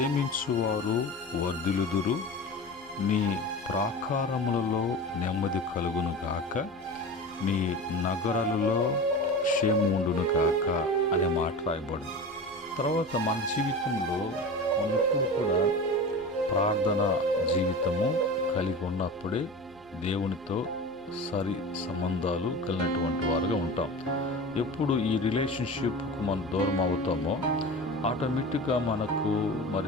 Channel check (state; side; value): noise; left; hum, 28 dB below the sound